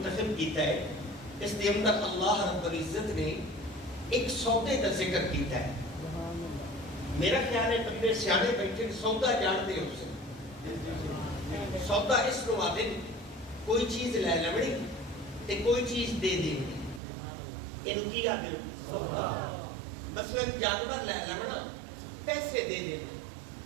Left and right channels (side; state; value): left; drops out; at 17.0 s